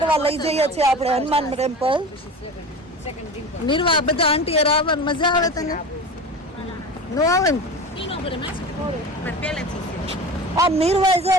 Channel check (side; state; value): both; normal; correlation 0.32